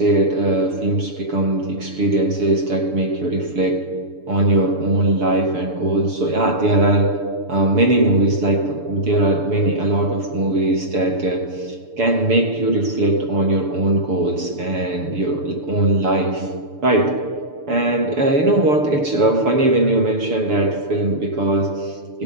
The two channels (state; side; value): late; left; 6.9 ms